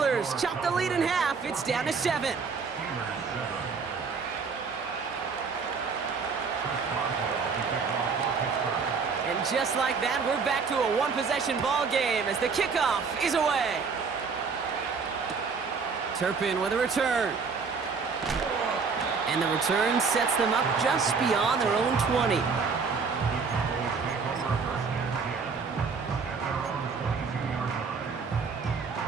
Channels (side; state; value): left; quieter; 5.2 dB